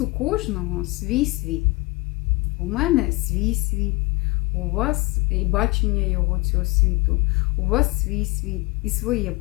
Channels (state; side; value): quieter; right; 23.9 dB